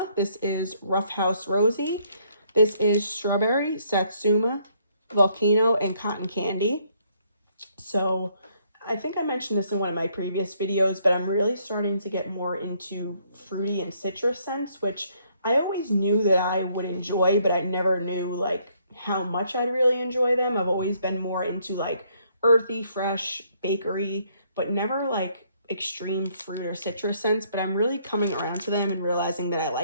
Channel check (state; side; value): inverted; both; correlation -0.68